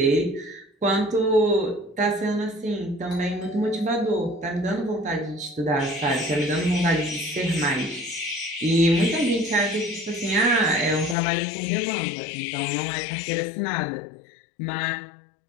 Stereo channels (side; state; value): right; drops out; at 11.2 s